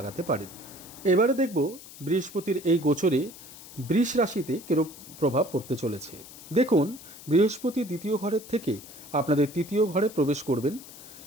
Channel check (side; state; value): left; noise; hiss, 17 dB below the sound